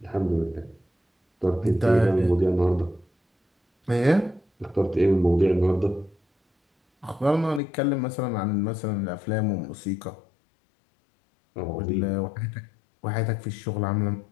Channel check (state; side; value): drops out; right; at 7.6 s